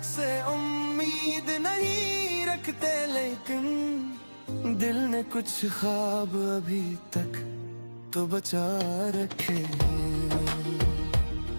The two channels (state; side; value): inverted; both; correlation -1.00